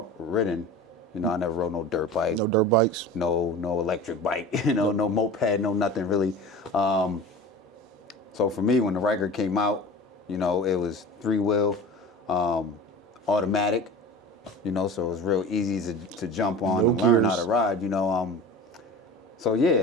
I never rode no dirt bike. No dirt bikes? No electric bike, no moped, no nothing really. So for me, when the Ryker came out, it was 3-wheel, automatic, so it was real easy to jump on and learn how to ride, So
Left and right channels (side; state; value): both; normal; correlation 0.36